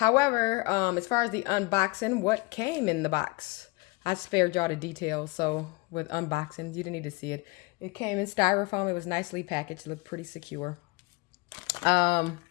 as far as the unboxing, what came in the box? I spared y'all the details, so with unboxing, you didn't need to see it. It came in styrofoam. It was nicely packaged, looked pretty secure.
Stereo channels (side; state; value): right; quieter; 24.8 dB